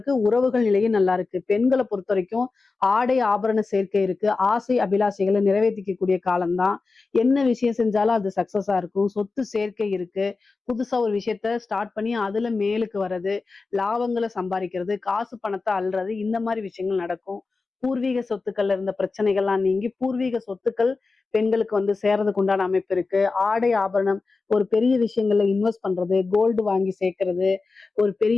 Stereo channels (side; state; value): right; quieter; 4.1 dB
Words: உறவுகள் நிலையும் நல்லா இருக்கு. பெண்களை பொறுத்த வரைக்கும் ஆடை ஆபரண சேர்க்கை இருக்கு. ஆசை அபிலாஷைகளை நிறைவேற்றிக்கக்கூடிய காலம்தான். என்ன விஷயம் செஞ்சாலும் அது சக்சஸா இருக்கும். சொத்து சேர்க்கை இருக்கு. புதுசா ஒரு விஷயத்த ஸ்டார்ட் பண்ணி அதுல மேலுக்கு வர்றது, லாபங்களை சம்பாதிக்கிறது, காசு பணத்தை அள்ளுறது, இந்த மாதிரி விஷயங்கள் நடக்கும். பூர்வீக சொத்துக்கள்ல இருந்த பிரச்சனைகள்லாம் நீங்கி பூர்வீக சொத்துக்கள் பெண்களுக்கு வந்து சேர்றதுக்கு உண்டான அமைப்பு இருக்கு. ஆடை ஆபரணம், ஒரு பெரிய விஷயங்கள்ல இன்வெஸ்ட் பண்றது, கோல்டு வாங்கி சேர்க்கறது, ஒரு